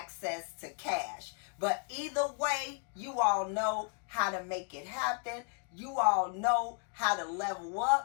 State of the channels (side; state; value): right; quieter; 38.4 dB